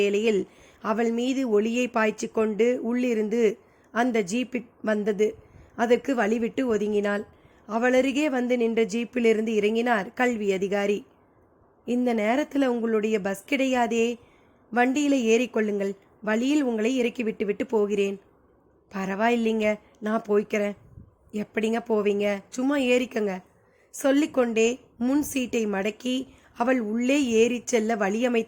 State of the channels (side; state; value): both; identical; correlation 1.00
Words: அவள் மீது ஒளியை பாய்ச்சி கொண்டு உள்ளிருந்து அந்த ஜீப் வந்தது. அதற்கு வழிவிட்டு ஒதுங்கினாள். அவளருகே வந்து நின்ற ஜீப்பிலிருந்து இறங்கினார் கல்வி அதிகாரி. இந்த நேரத்தில் உங்களுடைய பஸ் கிடையாதே, வண்டியில் ஏறிக்கொள்ளுங்கள், வழியில் உங்களை இறக்கி விட்டு போகிறேன். பரவாயில்லைங்க, நான் போய்க்கிறேன். எப்படிங்க போவீங்க, சும்மா ஏறிக்கங்க சொல்லிக்கொண்டே முன் சீட்டை மடக்கி அவள் உள்ளே ஏறி செல்ல